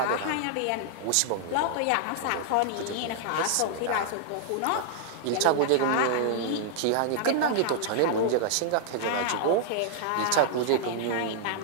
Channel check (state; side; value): different; both; correlation -0.01